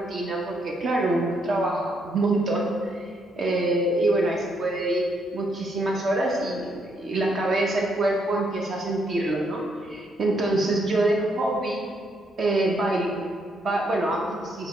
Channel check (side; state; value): both; normal; correlation 0.74